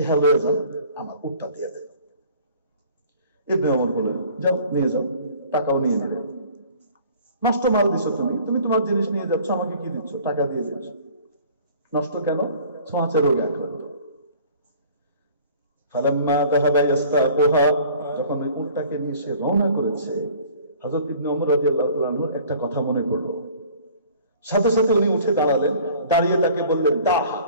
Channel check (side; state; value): both; inverted; correlation -0.50